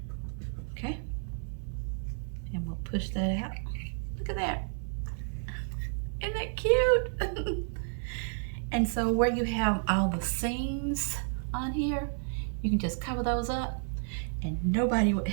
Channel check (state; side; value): silent; left; 57 dB below the other